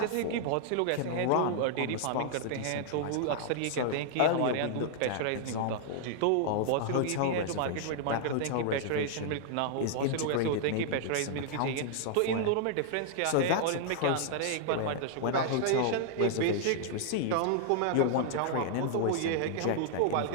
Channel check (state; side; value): different; both; correlation -0.01